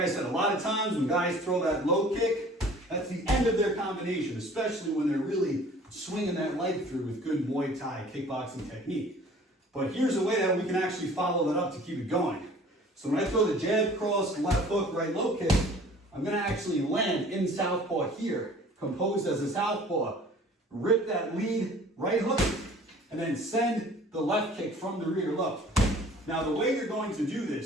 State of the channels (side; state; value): both; normal; correlation 0.49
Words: said, a lot of times when guys throw that low kick, that's the end of their combination, especially when they're really swinging that leg through with good Muay Thai kickboxing technique. But here's a way that we can actually follow that up to keep it going. So when I throw the jab, cross, left hook, right low kick, I'm going to actually land in southpaw here, composed as a southpaw, rip that lead right hook, and then send the left kick from the rear low. Now the way you're going to do